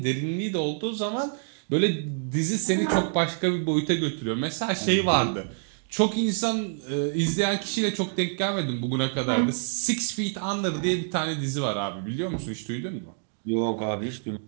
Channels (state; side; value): silent; left; digital silence